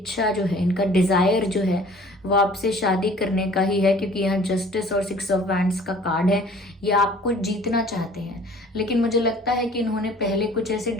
जो है, इनका डिजायर जो है वो आपसे शादी करने का ही है, क्योंकि यहाँ जस्टिस और 6 ऑफ वैंड्स का कार्ड है। ये आपको जीतना चाहते हैं, लेकिन मुझे लगता है कि इन्होंने पहले कुछ ऐसे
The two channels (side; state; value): both; normal; correlation 0.50